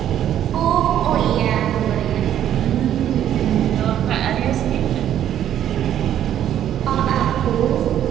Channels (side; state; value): left; quieter; 10.8 dB